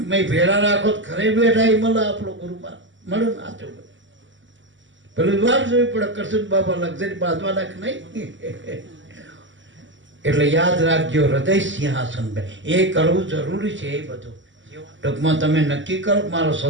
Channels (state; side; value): late; left; 0.55 ms